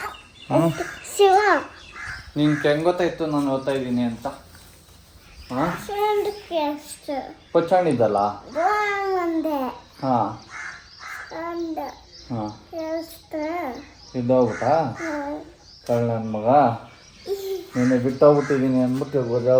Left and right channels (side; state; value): both; identical; correlation 1.00